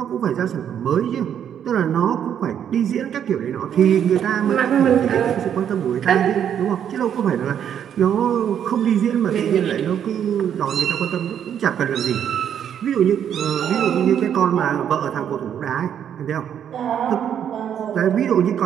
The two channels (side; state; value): left; quieter; 9.1 dB